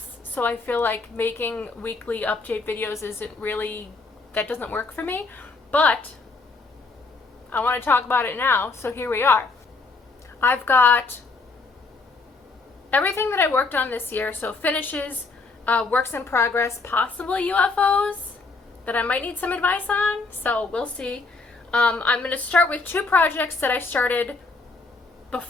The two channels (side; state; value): right; quieter; 3.8 dB